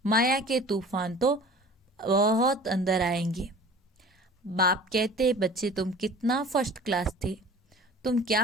माया के तूफान तो बहुत अंदर आएंगे। बाप कहते, बच्चे तुम कितना फर्स्ट क्लास थे, तुम क्या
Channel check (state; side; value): normal; both; correlation 0.43